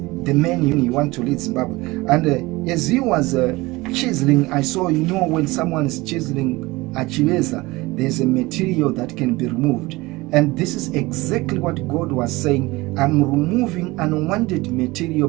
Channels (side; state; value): left; quieter; 21.3 dB